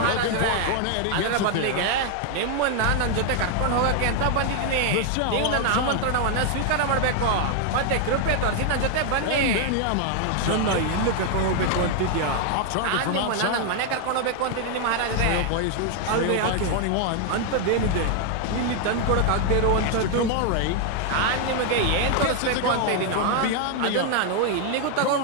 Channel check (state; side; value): different; both; correlation 0.00